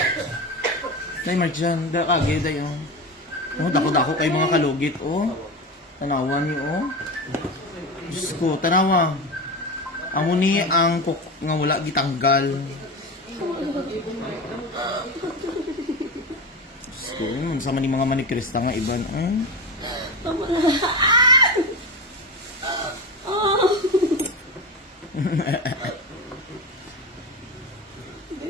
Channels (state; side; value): normal; both; correlation 0.22